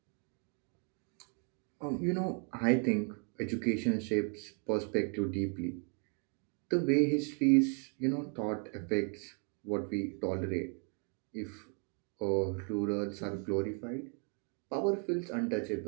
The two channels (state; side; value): quieter; left; 38.1 dB